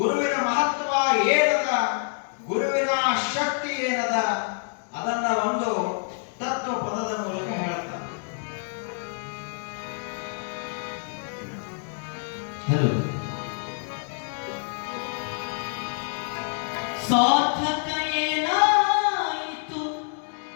ಮಹತ್ವ ಏನದ, ಗುರುವಿನ ಶಕ್ತಿ ಏನದ, ಅದನ್ನ ಒಂದು ತತ್ವ ಪದದ ಮೂಲಕ ಹೇಳ್ತಾರೆ. ಹಲೋ, ಸಾರ್ಥಕ ಏನಾಯಿತು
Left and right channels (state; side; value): silent; right; 60 dB below the other